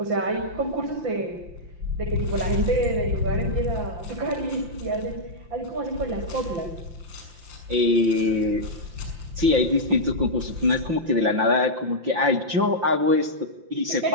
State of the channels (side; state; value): left; late; 5.7 ms